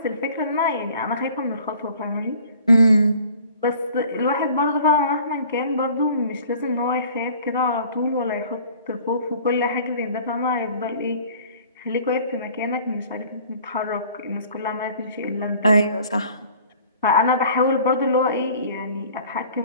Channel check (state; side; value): inverted; both; correlation -0.51